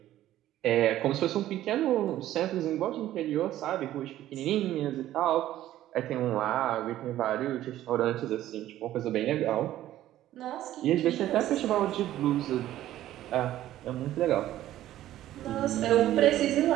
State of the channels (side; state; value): left; quieter; 13.5 dB